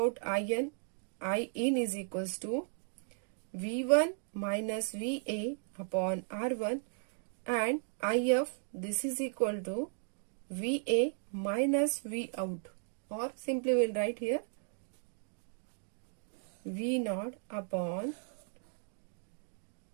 IN. I in is equals to V1 minus VA upon R1, and IF, this is equal to VA minus V out, or simply we'll write here V naught upon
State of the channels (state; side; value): silent; left; 54 dB below the other